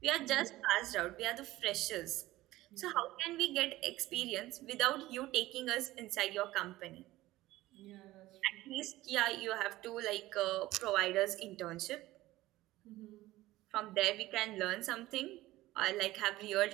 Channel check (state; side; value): quieter; left; 17.1 dB